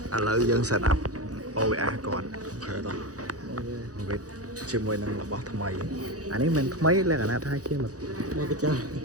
ឥឡូវយើង set up OBS គាត់អូខេតោះវិតជាមួយនឹងរបស់ថ្មីអានេះមិនថ្មីលក្ខណៈថាជាមក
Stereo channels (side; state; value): left; late; 0.67 ms